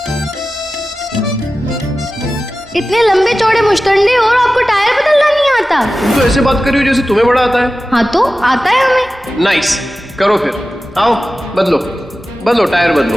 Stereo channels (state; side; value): normal; both; correlation 0.95